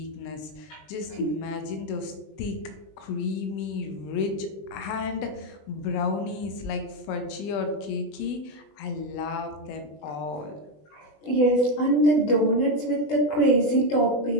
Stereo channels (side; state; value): right; late; 20 ms